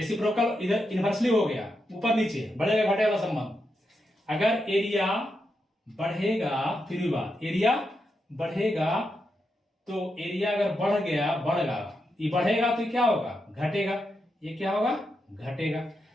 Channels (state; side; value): normal; both; correlation 0.85